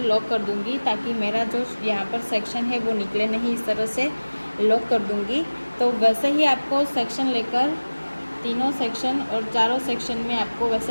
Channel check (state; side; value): inverted; both; correlation -1.00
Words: लॉक कर दूँगी ताकि मेरा जो यहाँ पर सेक्शन है वो निकले नहीं। इस तरह से लॉक कर दूँगी। तो वैसे ही आपको सेक्शन लेकर तीनों सेक्शन और चारों सेक्शन में आपको